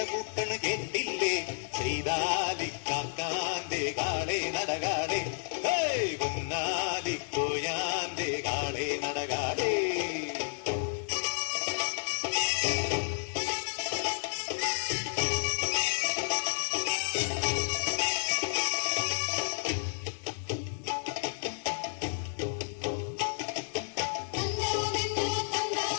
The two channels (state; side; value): silent; right; digital silence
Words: കൂട്ടണ കേട്ടില്ലേ, ചെയ്താലിക്കാക്കാന്റെ കാളെ നടകാളെ, പൊന്നാലിക്കോയാന്റെ കാളെ നടകാളെ.